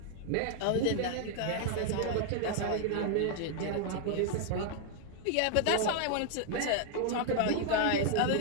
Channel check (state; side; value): different; both; correlation 0.00